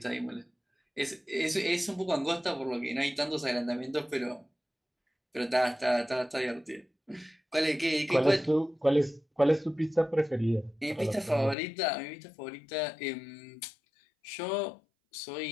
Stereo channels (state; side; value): drops out; right; at 11.6 s